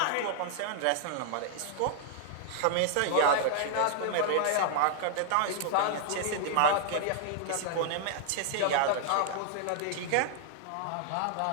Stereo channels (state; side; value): different; both; correlation -0.01